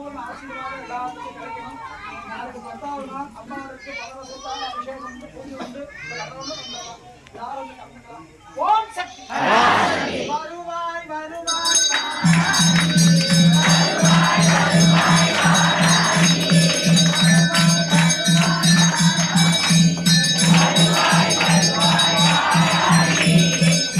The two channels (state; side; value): identical; both; correlation 1.00